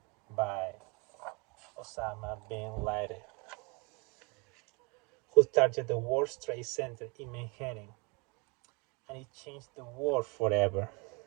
by Osama bin Laden, who targeted the World Trade Center in Manhattan, and it changed the world forever.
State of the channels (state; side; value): quieter; left; 30.4 dB